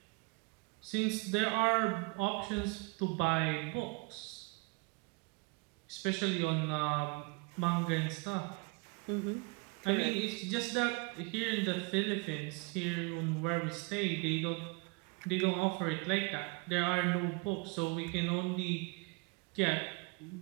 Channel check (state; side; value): quieter; left; 29.8 dB